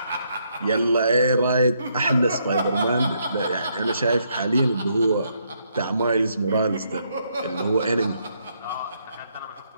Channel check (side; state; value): both; inverted; correlation -0.74